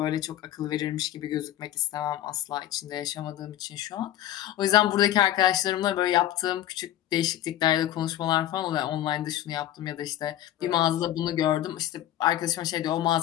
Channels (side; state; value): right; quieter; 12.8 dB